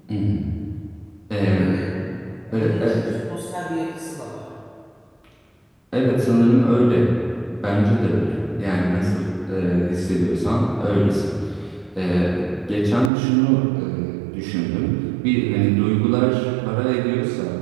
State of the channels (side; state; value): left; drops out; at 13.1 s